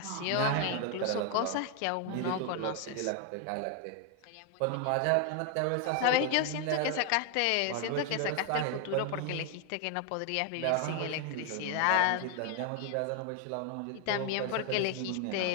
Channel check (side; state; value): both; different; correlation 0.01